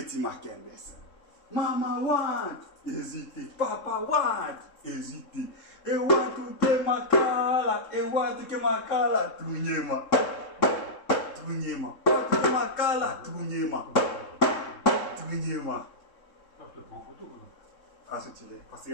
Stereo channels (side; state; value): right; late; 3.7 ms